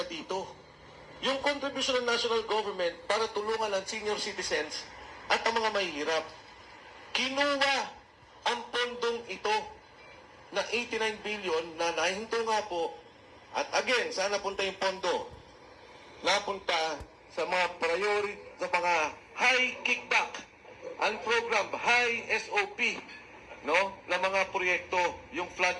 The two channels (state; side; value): identical; both; correlation 1.00